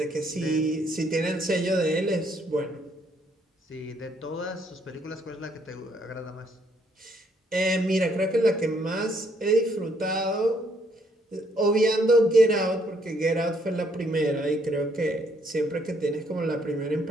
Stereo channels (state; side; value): normal; both; correlation 0.69